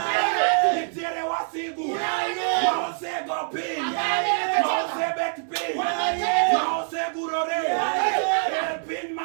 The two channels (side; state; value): left; silent; digital silence